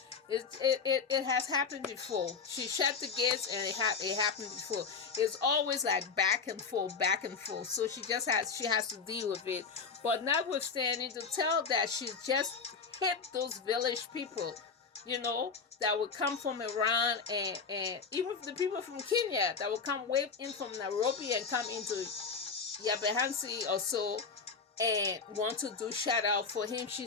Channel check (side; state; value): right; quieter; 5.3 dB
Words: it has happened before. She shut the gates and it happened before. It's always like back and forth. So she has to deal with it. But notwithstanding, to tell that she just hit those village people, that would come from Iran, and even the people from Kenya that would come way in from Nairobi and come into Yabehansi or so and want to do shout out for him.